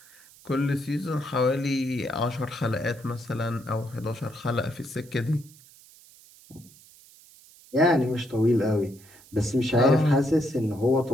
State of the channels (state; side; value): noise; right; hiss, 24 dB below the sound